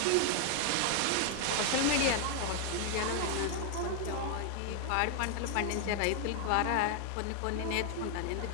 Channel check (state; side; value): different; both; correlation 0.00